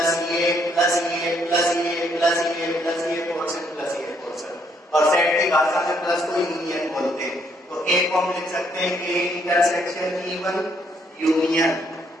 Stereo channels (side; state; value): both; normal; correlation 0.70